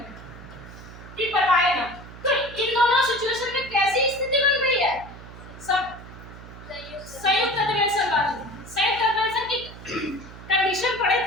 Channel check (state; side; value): noise; right; hum, 16 dB below the sound